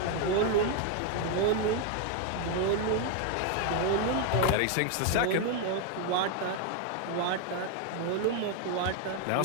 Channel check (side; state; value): both; different; correlation 0.01